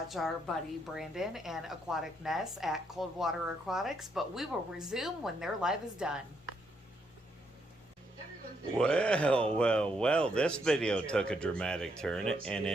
our buddy Brandon and Aquatic Ness at Coldwater Aquatics, but we will resume when their live is done. Well, this video took a dramatic turn, and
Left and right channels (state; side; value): normal; both; correlation 0.75